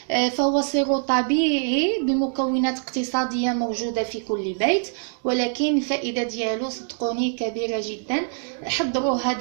فهو سيرو طبيعي بمكونات اقتصاديه موجوده في كل بيت، ولكن الفائده ديالو صدقوني كبيره جدا. حضروها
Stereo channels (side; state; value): left; silent; digital silence